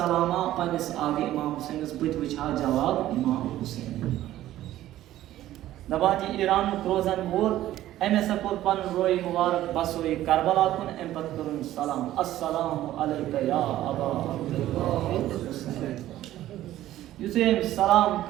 पन्निस आगे इमाम हुसैनस बत वुछा जवाब इमाम हुसैन दपान यह ईरान रोजन वोल अम हसा कोर पन रोई मुबारक बसोई करबला कुन अम पत करुन सलाम अस्सलामु अलैका या अबा अब्दुल्लाह युथे सलाम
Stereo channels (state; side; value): quieter; left; 13.9 dB